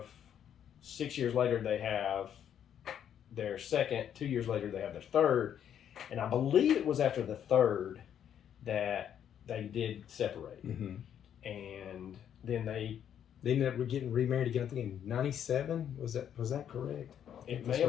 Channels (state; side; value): quieter; right; 9.4 dB